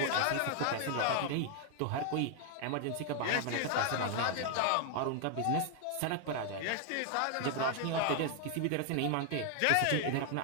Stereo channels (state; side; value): different; both; correlation 0.00